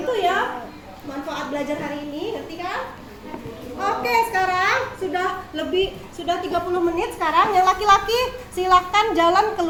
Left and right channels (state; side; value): identical; both; correlation 1.00